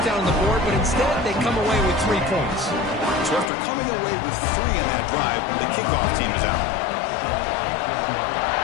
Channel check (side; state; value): right; drops out; at 3.5 s